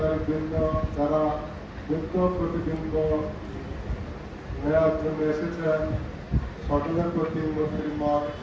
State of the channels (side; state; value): both; identical; correlation 1.00